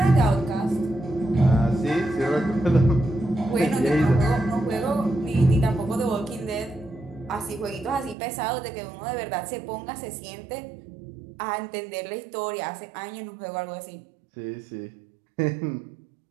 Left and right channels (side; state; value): left; drops out; at 8.2 s